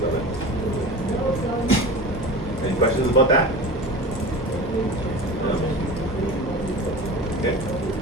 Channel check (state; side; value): normal; both; correlation 0.33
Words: of it. Any questions about that? No? Okay.